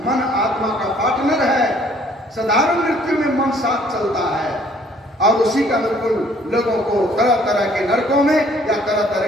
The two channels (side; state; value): both; normal; correlation 0.60